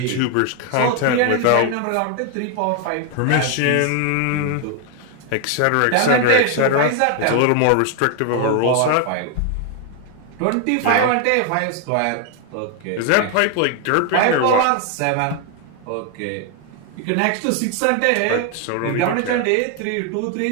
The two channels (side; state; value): both; different; correlation 0.01